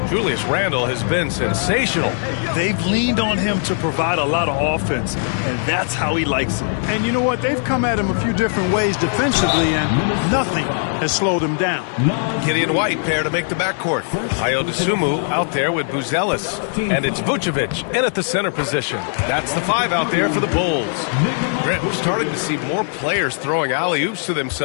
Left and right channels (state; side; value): silent; right; digital silence